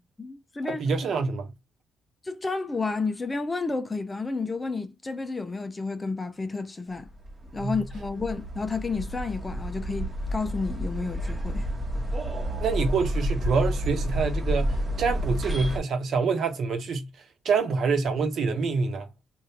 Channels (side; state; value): both; normal; correlation 0.79